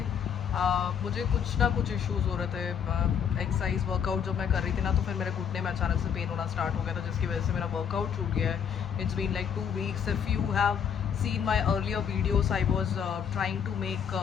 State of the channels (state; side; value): quieter; right; 7.7 dB